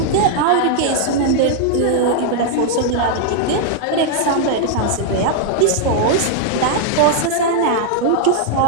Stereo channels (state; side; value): different; both; correlation -0.01